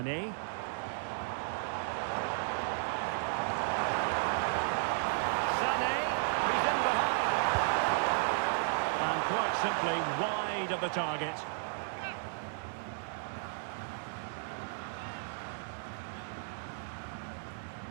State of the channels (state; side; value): silent; left; digital silence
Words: Sané, he's in behind. And quite simply wide of the target.